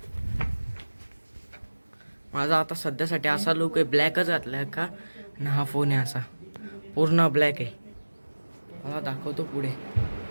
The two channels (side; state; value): both; inverted; correlation -1.00